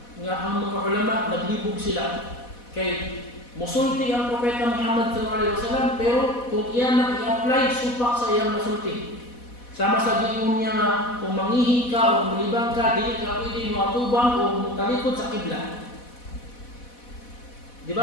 ang mga ulama naglibog sila kay musulti ang Propeta Muhammad sallallahu alaihi wasallam, pero kung iyan na i-apply supak sa iyang masulti Sama sa giingon niya nga, kung mangihi ka o malibang ka, dili ka pwede mo atubang o talikod sa kibla. Di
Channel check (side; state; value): right; late; 4.1 ms